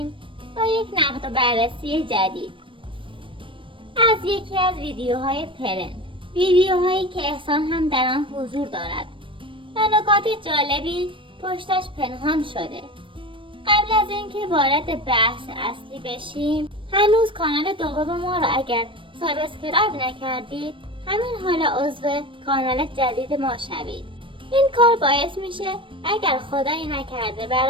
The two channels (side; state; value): left; late; 0.25 ms